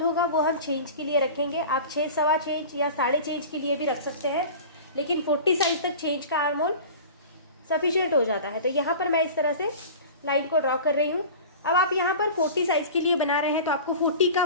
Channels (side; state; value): both; inverted; correlation -0.37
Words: होगा वो हम 6 इंच के लिए रखेंगे। आप 6, 6.25 इंच या 6.5 इंच के लिए भी रख सकते हैं, लेकिन 40 साइज तक 6 इंच का आर्म होल सफिशियंट हो जाता है। तो यहाँ पर मैं इस तरह से लाइन को ड्रॉ कर रही हूँ। अब आप यहाँ पर 40 साइज के लिए बना रहे हैं तो आपको 40 का